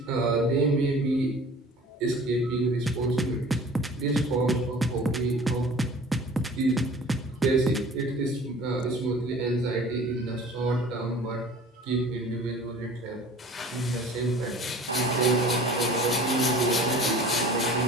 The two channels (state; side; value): normal; both; correlation 0.45